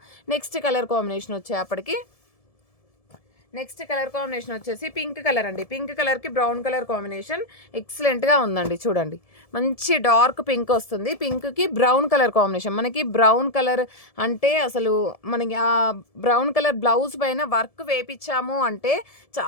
నెక్స్ట్ కలర్ కాంబినేషన్ వచ్చేప్పటికి నెక్స్ట్ కలర్ కాంబినేషన్ వచ్చేసి పింక్ కలర్ అండి. పింక్ కలర్కి బ్రౌన్ కలర్ కాంబినేషన్ ఎక్సలెంట్గా ఉందండి. చూడండి, మంచి డార్క్ పింక్ వస్తుంది. పింక్కి బ్రౌన్ కలర్ కాంబినేషన్. మనకి బ్రౌన్ కలర్ అంటే అసలు మనకి ఆ బ్రౌన్ కలర్ బ్లౌజ్ పైన వర్క్ వేపించాము అంటే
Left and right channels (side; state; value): right; late; 1.7 ms